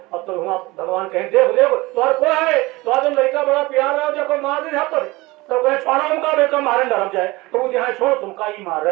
अब तो वहाँ भगवान कहें देख देखो तो को है तो आज लड़का बड़ा प्यार रहा जब मार दे यहाँ पर तो कहे छोड़ा उनका बेटा मारे डर जाए तो वो यहाँ छोड़ तुमका ही मार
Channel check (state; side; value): quieter; left; 21.6 dB